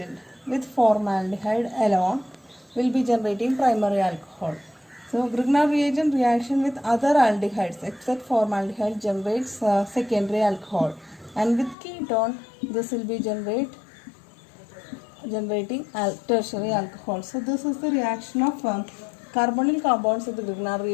with formaldehyde alone will be generating primary alcohol. So Grignard reagent reaction with other aldehydes except formaldehyde generates secondary alcohol, and with ketone this will be generating tertiary alcohol. So this is the reaction of carbonyl compounds with the Grignard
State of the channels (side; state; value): right; drops out; at 11.8 s